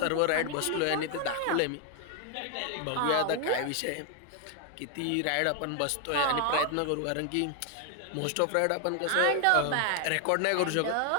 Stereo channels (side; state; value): both; different; correlation 0.00